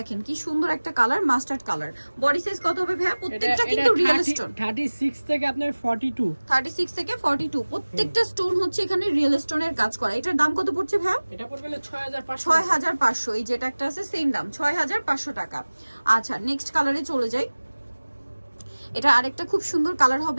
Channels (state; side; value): inverted; both; correlation -1.00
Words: কি সুন্দর একটা colour, mustard colour. Body size কত হবে ভাইয়া? প্রত্যেকটা কিন্তু রিয়েল স্টোন, 36 থেকে আপনার 42, 36 থেকে 42 প্রত্যেকটা স্টোন হচ্ছে এখানে রিয়েল স্টোনের কাজ করা। এটার দাম কত পড়ছে ভাইয়া? এটা পড়বে 6500। 6500। এই যেটা একটা আছে সেম দাম 6500 টাকা। আচ্ছা নেক্সট কালারে চলে যাই। এটা আরেকটা খুব সুন্দর কালার